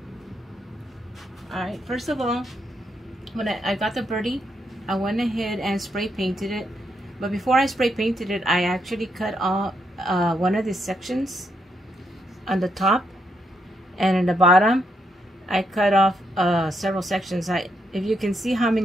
Alright, first of all, when I got the birdie, I went ahead and spray painted it. But before I spray painted it, I actually cut off one of these sections on the top, and in the bottom I cut off several sections. If you can see how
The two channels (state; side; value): normal; both; correlation 0.78